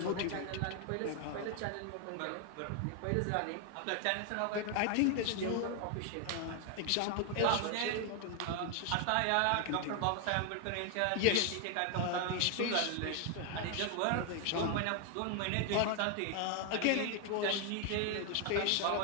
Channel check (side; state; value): both; different; correlation 0.00